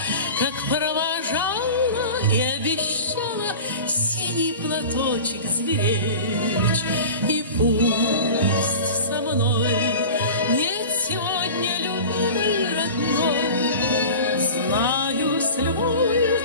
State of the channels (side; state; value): both; inverted; correlation -0.36